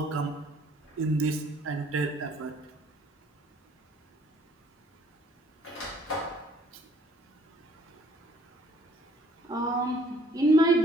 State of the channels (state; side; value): normal; both; correlation 0.60